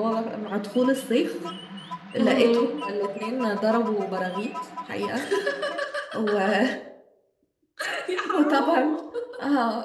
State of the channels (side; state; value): both; identical; correlation 1.00